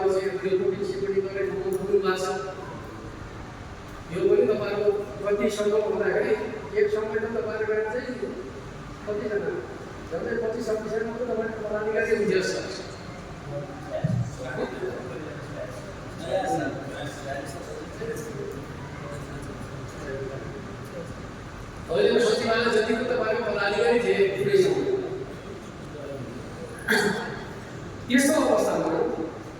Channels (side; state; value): both; identical; correlation 1.00